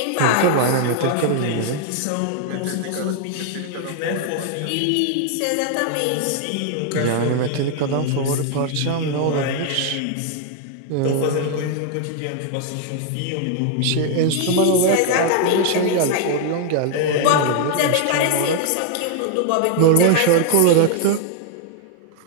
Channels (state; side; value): different; both; correlation 0.00